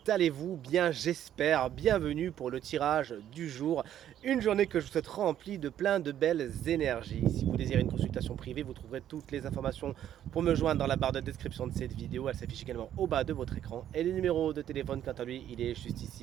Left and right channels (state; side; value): quieter; left; 10.9 dB